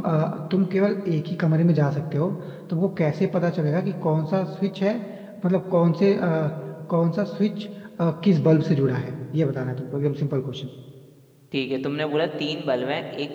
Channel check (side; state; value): both; identical; correlation 1.00